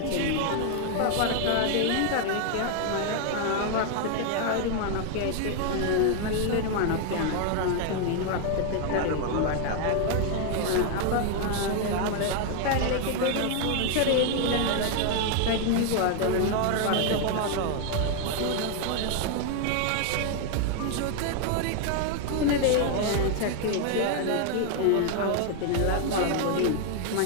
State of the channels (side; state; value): both; different; correlation 0.00